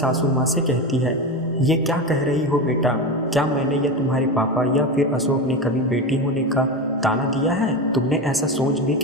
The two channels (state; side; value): normal; both; correlation 0.20